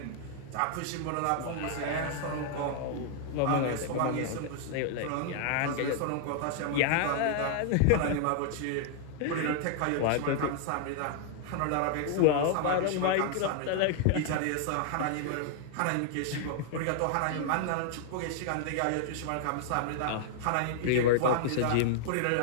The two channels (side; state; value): both; different; correlation 0.00